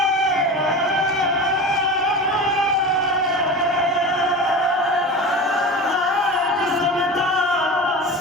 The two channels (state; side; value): normal; both; correlation 0.30